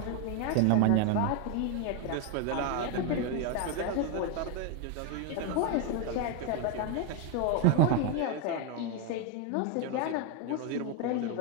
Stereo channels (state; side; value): different; both; correlation 0.01